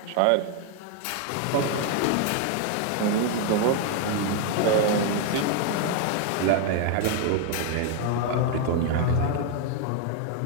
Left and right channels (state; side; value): different; both; correlation 0.00